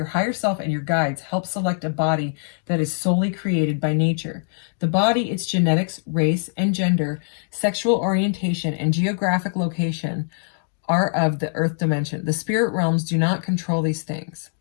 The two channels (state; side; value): silent; right; digital silence